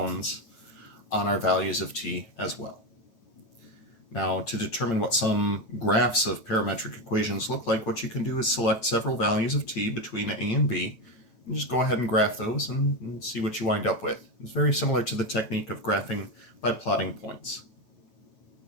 on our values of t as well. Now, to determine what some graphs of parametric equations look like, what you can do is select several values of t between a and b, and just go ahead and graph those and see what you wind up with. It's very similar to the technique of graphing by plotting points.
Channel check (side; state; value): right; late; 8.8 ms